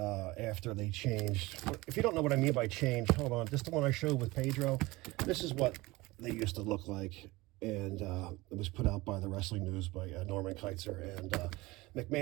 after they changed. If you don't know what I mean by change, hold on. This is the one I showed with Pedro. This is what they used to look like. And it was put out by the Wrestling News by Norman Keitzer. And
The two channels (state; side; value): quieter; left; 21.2 dB